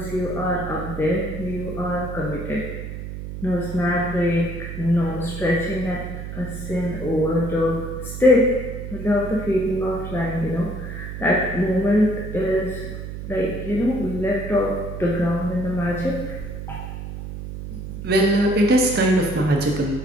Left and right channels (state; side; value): noise; right; hum, 8 dB below the sound